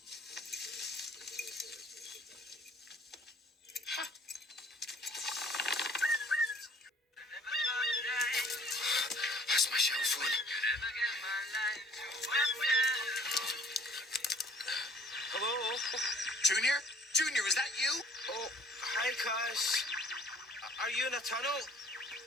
Where's my cell phone? Hello? Junior? Junior, is that you? Oh, hi, Kaz. Are you in a tunnel?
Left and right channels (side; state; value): both; normal; correlation 0.54